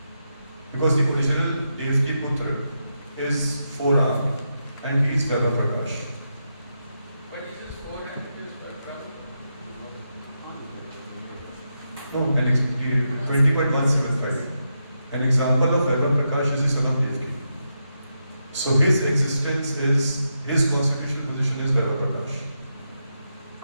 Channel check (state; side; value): inverted; both; correlation -0.85